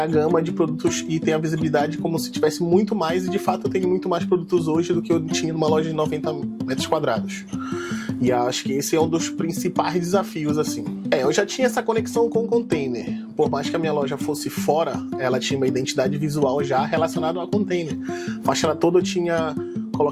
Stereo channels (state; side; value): identical; both; correlation 1.00